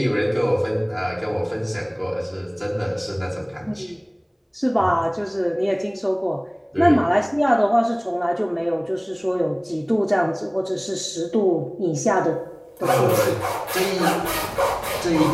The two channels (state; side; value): identical; both; correlation 1.00